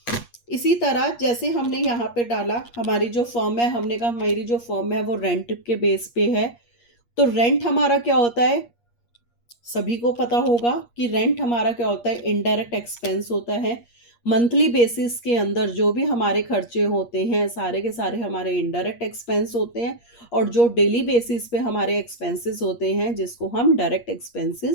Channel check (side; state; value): right; late; 8.5 ms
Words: इसी तरह जैसे हमने यहाँ पे डाला हमारी जो फर्म है, हमने कहा हमारी जो फर्म है वो रेंट के बेस पे है, तो रेंट हमारा क्या होता है, सभी को पता होगा कि रेंट हमारा क्या होता है, इनडायरेक्ट एक्सपेंस होता है। मंथली बेसिस के अंदर जो भी हमारे खर्चे होते हैं सारे के सारे हमारे इनडायरेक्ट एक्सपेंस होते हैं, और जो डेली बेसिस पे हमारे एक्सपेंसेस होते हैं जिसको हम डायरेक्ट